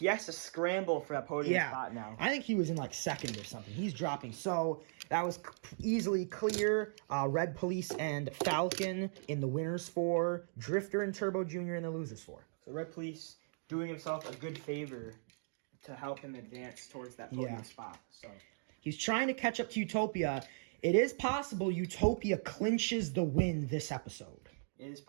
has to scramble for that podium spot now. I think he was in like 2nd or something. He's dropping. So that was easily clear. Red Police and Falcon in the winners 4. Drifter and Turbo Jr. in the losers 4. So Red Police doing himself a good favor to help him advance towards that podium spot. So he's trying to catch up to Utopia. It is possible Utopia clinches the win this episode. It is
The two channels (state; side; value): silent; left; digital silence